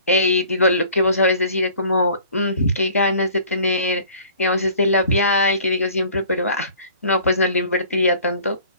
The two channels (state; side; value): inverted; both; correlation -0.50